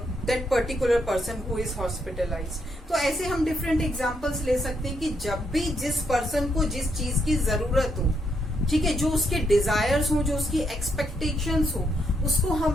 particular person who is hospitalized। तो ऐसे हम डिफरेंट एग्जांपल्स ले सकते हैं कि जब भी जिस पर्सन को जिस चीज की जरूरत हो, ठीक है, जो उसके डिजायर्स हो, जो उसकी एक्सपेक्टेशंस हो, उसको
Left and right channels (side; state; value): both; normal; correlation 0.77